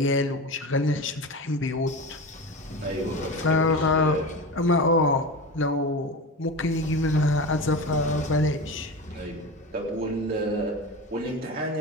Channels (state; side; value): normal; both; correlation 0.26